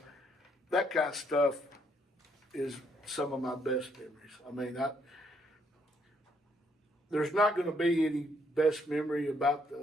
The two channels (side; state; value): both; normal; correlation 0.71